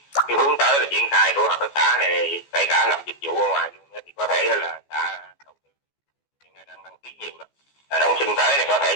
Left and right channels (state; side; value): late; right; 14 ms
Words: hướng tới là triển khai của hợp tác xã này, kể cả làm dịch vụ ở ngoài luôn thì có thể là xã đầu tư hiện nay đang đăng ký nhiều đó. Đông xuân tới này có thể